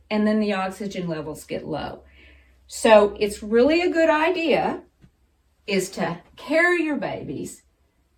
and then the oxygen levels get low. So it's really a good idea is to carry your babies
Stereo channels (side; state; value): both; identical; correlation 1.00